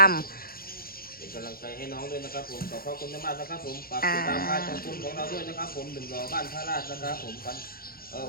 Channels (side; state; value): right; late; 0.43 ms